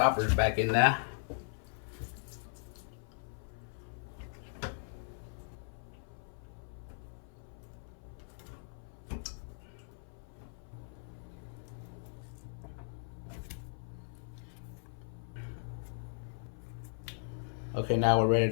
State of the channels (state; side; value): silent; right; 53 dB below the other